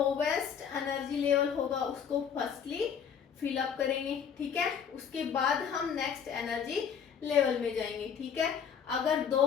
एनर्जी लेवल होगा उसको फर्स्टली फिल अप करेंगे। ठीक है, उसके बाद हम नेक्स्ट एनर्जी लेवल में जाएंगे। ठीक है, अगर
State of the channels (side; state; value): right; quieter; 7.5 dB